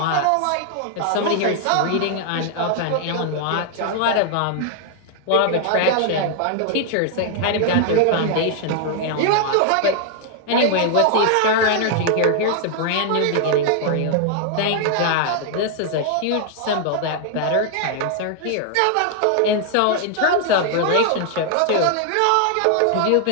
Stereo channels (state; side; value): different; both; correlation 0.00